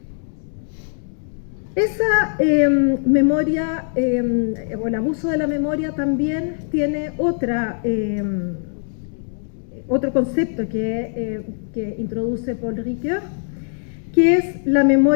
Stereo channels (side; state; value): right; silent; digital silence